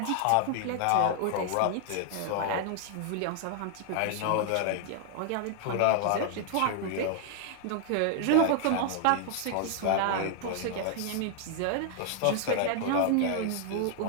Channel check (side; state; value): both; different; correlation 0.00